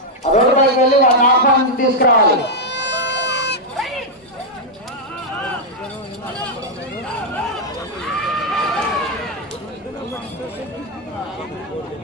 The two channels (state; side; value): normal; both; correlation -0.02